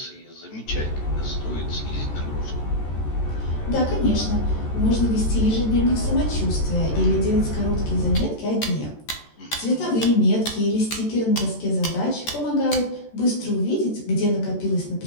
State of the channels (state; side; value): late; right; 14 ms